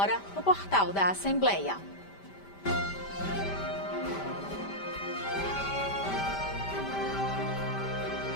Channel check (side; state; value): right; late; 5.1 ms